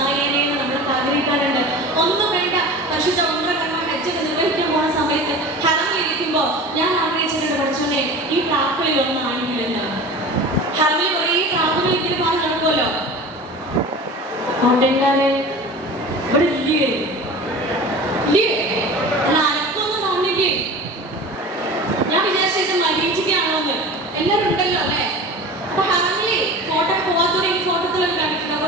നമ്മളൊക്കെ ആഗ്രഹിക്കാറുണ്ട്. ഒന്നും വേണ്ട, പരിശുദ്ധ ഉംറ കർമ്മ ഹജ്ജൊക്കെ നിർവഹിക്കാൻ പോണ സമയത്ത് ഹറമിലിരിക്കുമ്പോ ഞാൻ ആഗ്രഹിച്ചിട്ടുണ്ട് പഠിച്ചോനെ ഈ പ്രാക്കളിൽ ഒന്നാണെങ്കിലെന്ന്. ഹറമിൽ കുറേ പ്രാക്കുകൾ ഇങ്ങനെ പാൽ നടക്കുമല്ലോ. കൊണ്ടെല്ലാരെ ഇവിടെ ഇല്ലേ അനക്കൊന്നും തോന്നില്ലേ? ഞാൻ വിചാരിച്ചത് മരീചിക്കാണോന്ന്. എല്ലാവരും ഉണ്ടല്ലോ അല്ലെ. അപ്പൊ ഹറമിലെ ഫോട്ടോ പോവാത്തവരെ ഈ ഫോട്ടോത്തിലൊക്കെ കണ്ടിട്ടുണ്ട്,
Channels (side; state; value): both; normal; correlation 0.36